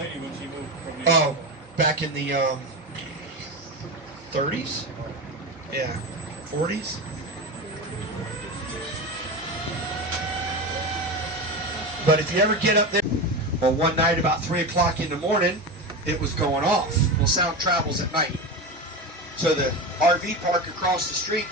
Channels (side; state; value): both; normal; correlation 0.22